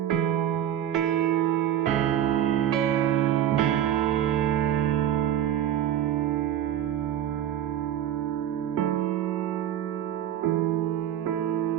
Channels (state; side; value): quieter; left; 10.9 dB